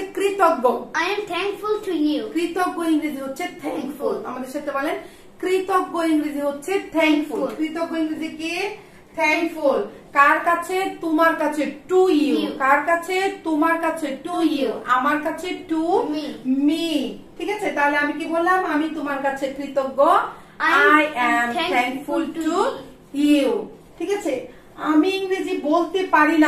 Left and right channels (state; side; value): identical; both; correlation 1.00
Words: কৃতজ্ঞ। I am thankful to you. কৃতজ্ঞ ইংরেজি হচ্ছে থ্যাঙ্কফুল। আমাদের সাথে বলেন কৃতজ্ঞ ইংরেজি হচ্ছে থ্যাঙ্কফুল। কৃতজ্ঞ ইংরেজি কি? থ্যাঙ্কফুল। কার কাছে? তোমার কাছে টু ইউ। কার কাছে? তোমার কাছে টু ইউ। আমার কাছে টু মি। ঠিক আছে, তাহলে আমি কি বললাম? আমি তোমার কাছে কৃতজ্ঞ। I am thankful to you। ঠিক আছে, আমি ইংরেজি বলতে পারি